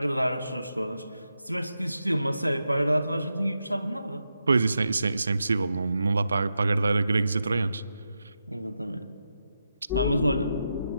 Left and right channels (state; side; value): inverted; both; correlation -0.87